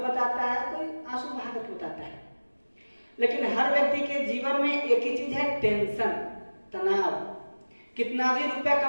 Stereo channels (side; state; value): both; inverted; correlation -1.00